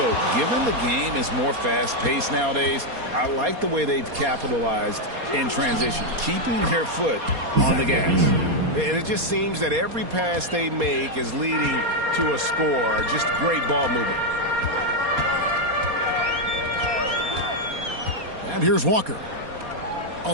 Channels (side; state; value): left; late; 4.2 ms